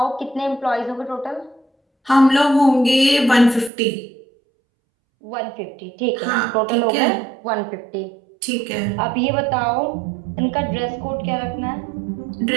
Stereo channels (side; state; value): left; drops out; at 3.7 s